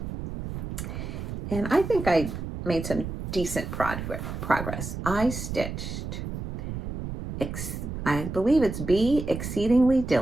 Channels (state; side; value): noise; right; rumble, 7 dB below the sound